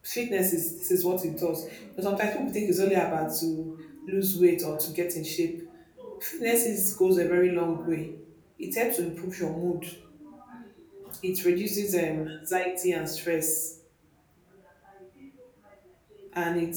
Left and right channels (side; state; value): both; identical; correlation 1.00